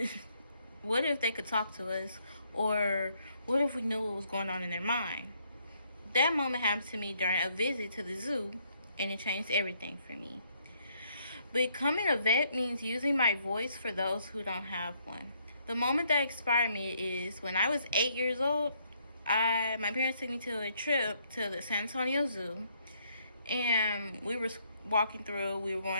what if they could talk to us? Or what if we knew what was going on in their mind? That moment happened to me during a visit to the zoo, and it changed everything for me. Becoming a vet means using my voice for those who don't have one. The moment that inspired me is when I was 8 years old. My parents took me to a trip to the San Antonio Zoo, and we were going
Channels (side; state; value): both; inverted; correlation -0.70